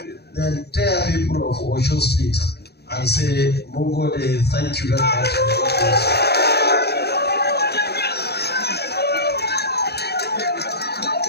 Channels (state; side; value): late; right; 0.47 ms